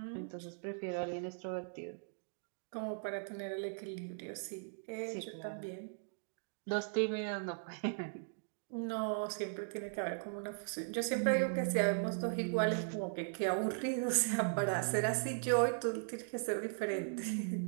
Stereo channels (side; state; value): left; silent; digital silence